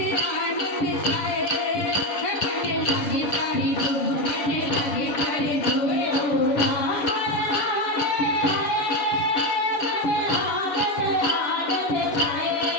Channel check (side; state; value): right; late; 7.0 ms